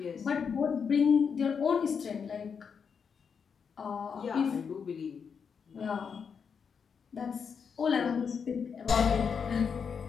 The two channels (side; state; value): right; quieter; 6.4 dB